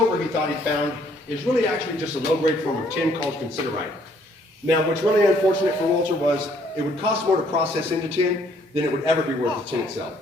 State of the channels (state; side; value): normal; both; correlation 0.64